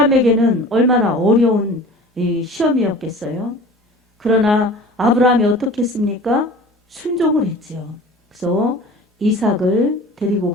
얼마나 어려운 이 시험이었겠어요. 그러나 아브라함이 어떻게 했습니까? 순종을 했지요. 그래서 이삭을 데리고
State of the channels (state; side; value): normal; both; correlation 0.42